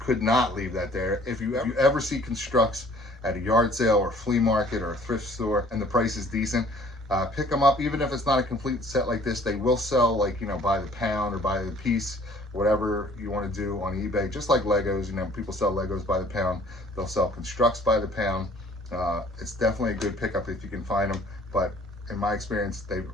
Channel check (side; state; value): both; normal; correlation 0.54